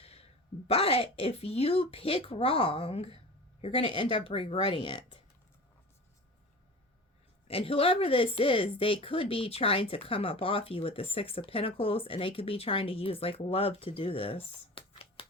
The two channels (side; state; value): both; normal; correlation 0.35